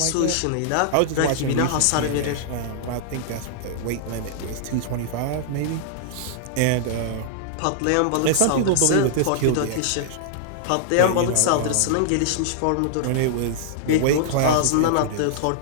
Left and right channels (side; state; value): both; different; correlation -0.01